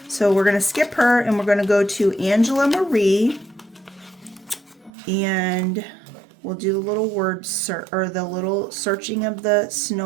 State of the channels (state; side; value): drops out; left; at 4.9 s